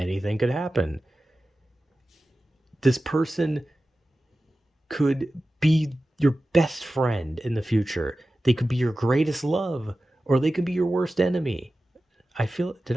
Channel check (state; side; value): normal; both; correlation 0.95